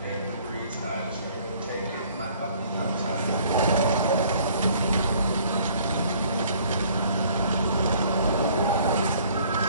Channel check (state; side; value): inverted; both; correlation -0.57